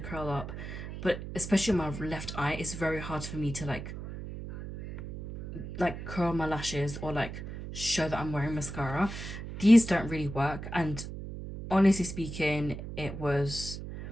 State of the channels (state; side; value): noise; right; hum, 9 dB below the sound